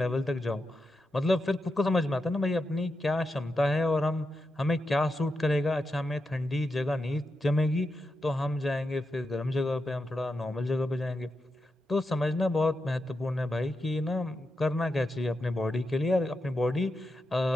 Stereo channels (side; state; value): both; normal; correlation 0.87